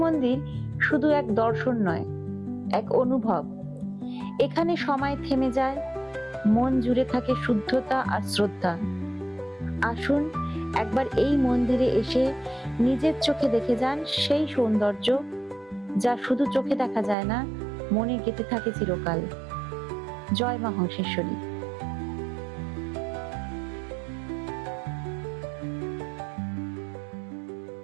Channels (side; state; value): left; drops out; at 17.2 s